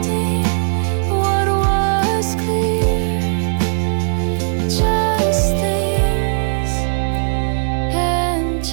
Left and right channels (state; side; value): silent; left; digital silence